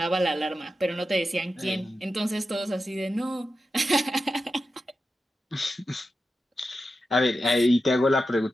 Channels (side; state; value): both; normal; correlation 0.91